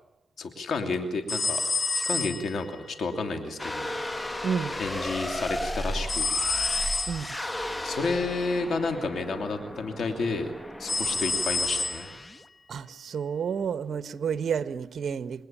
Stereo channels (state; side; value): normal; both; correlation 0.83